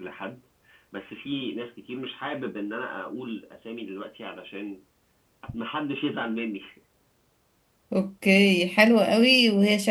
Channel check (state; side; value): identical; both; correlation 1.00